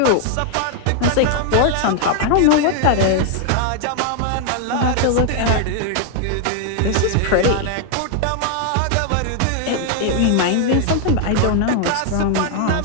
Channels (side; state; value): both; different; correlation 0.00